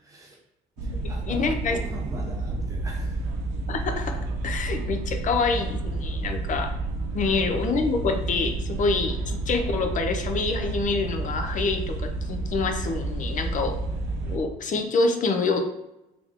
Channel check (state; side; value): normal; both; correlation 0.53